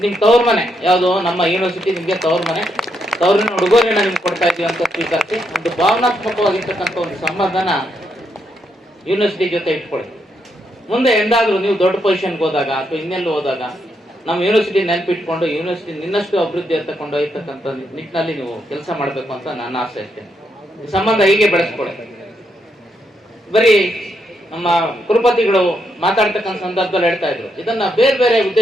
ನಿಮ್ ತವ್ರ ಮನೆ ಯಾವುದು, ನಮ್ಮ ಯೂನಿವರ್ಸಿಟಿ ನಿಮ್ಗೆ ತವ್ರ ಮನೆ, ತವರಿನ ಉಡುಗೊರೆನ ನಿಮ್ಗೆ ಕೊಡ್ತಾ ಇದೀವಿ ಅಂತ ಸ್ವೀಕರಿಸಿ ಒಂದು ಭಾವನಾತ್ಮಕವಾಗಿರ್ತಕ್ಕಂಥ ಒಂದು ಸಂಬಂಧನ ಯೂನಿವರ್ಸಿಟಿ ಜೊತೆ ಇಟ್ಕೊಳ್ಳಿ. ಮುಂದೆ ಎಂದಾದ್ರೂ ನೀವು ದೊಡ್ಡ ಪೊಸಿಷನ್ಗೆ ಹೋದಾಗ ಅಥವಾ ಇನ್ನೆಲ್ಲೂ ಹೋದಾಗ ನಮ್ಮ ಯೂನಿವರ್ಸಿಟಿ ನೆನಪಿಟ್ಕೊಂಡು ಯೂನಿವರ್ಸಿಟಿ ನಿನ್ನಷ್ಟು ಅಭಿವೃದ್ಧಿ ಅಂತ ಕೊಂಡೊಯ್ಯತಕ್ಕಂಥ ನಿಟ್ಟಿನಲ್ಲಿ ನೀವು ಕೆಲಸ ಮಾಡಬೇಕು ಅಂತ ನನ್ನ ಆಸೆ ಅಷ್ಟೇ. ಈ ಸಂಬಂಧ ಹೀಗೆ ಬೆಳೆಸ್ಕೊಳ್ಳಿ. ಬರೀ ನಮ್ಮ ಕುಲಪತಿಗಳು ಮಾತಾಡ್ತಕ್ಕಂಥ ಸಂದರ್ಭದಲ್ಲಿ ಹೇಳ್ತಾ ಇದ್ರು, ಇದನ್ನ ಬೇರೆ ಬೇರೆ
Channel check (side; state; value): both; normal; correlation 0.79